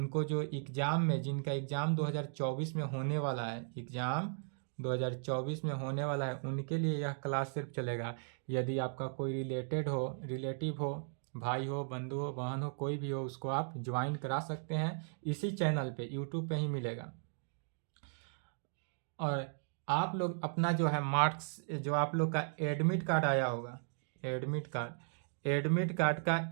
जो एग्ज़ाम में, जिनका एग्ज़ाम 2024 में होने वाला है, एग्ज़ाम 2024 में होने वाला है, उनके लिए यह क्लास सिर्फ चलेगा। यदि आपका कोई रिलेटिव हो, भाई हो, बंधु हो, बहन हो, कोई भी हो, उसको आप ज्वाइन करा सकते हैं इसी चैनल पे, यूट्यूब पे ही मिलेगा। और आप लोग अपना जो है मार्क्स, जो आप लोग का एडमिट कार्ड आया होगा, एडमिट कार्ड का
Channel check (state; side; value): silent; left; digital silence